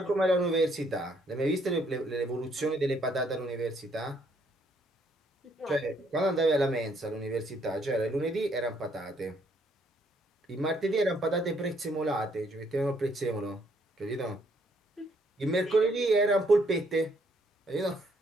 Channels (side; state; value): both; normal; correlation 0.69